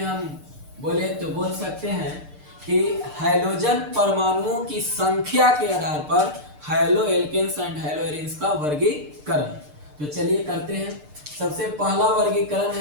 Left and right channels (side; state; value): left; late; 6.7 ms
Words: हम बोले तो बोल सकते हैं कि हाइड्रोजन परमाणुओं की संख्या के आधार पर haloalkanes and haloarenes का वर्गीकरण। तो चलिए करते हैं। सबसे पहला वर्गीकरण